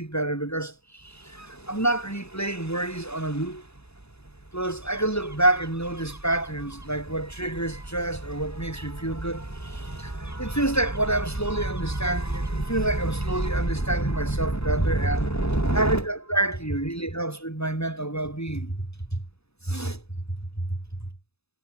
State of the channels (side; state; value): right; late; 0.79 ms